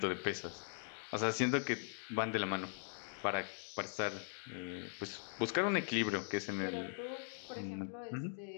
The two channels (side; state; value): right; silent; digital silence